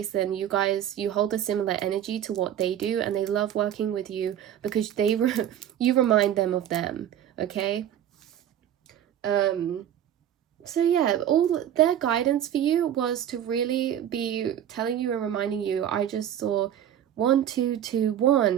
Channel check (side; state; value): left; quieter; 10.5 dB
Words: then you guys, you hold a similar energy to what they do, and they love working with you because they you remind them of them, okay? So yeah, all their guidance for you was to really be telling you and reminding you. I just saw 1 2 2